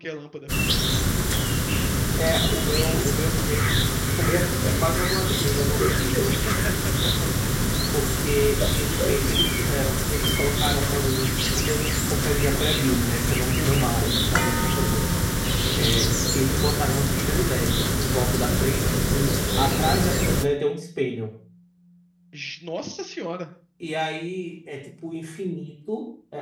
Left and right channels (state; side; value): identical; both; correlation 1.00